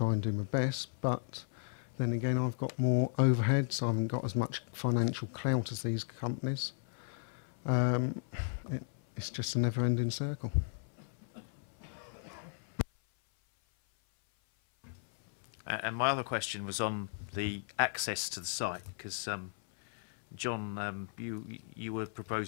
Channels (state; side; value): silent; right; 54 dB below the other